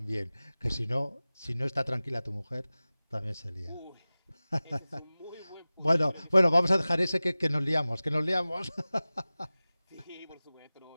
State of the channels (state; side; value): inverted; both; correlation -0.98